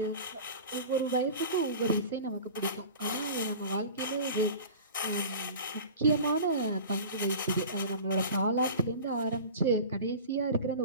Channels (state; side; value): inverted; both; correlation -0.37